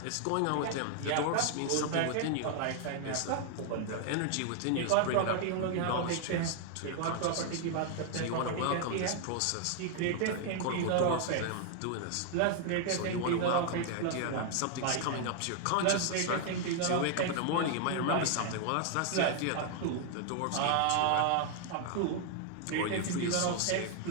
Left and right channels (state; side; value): different; both; correlation 0.00